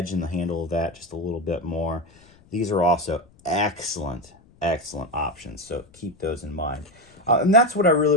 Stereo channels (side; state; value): left; noise; rumble, 28 dB below the sound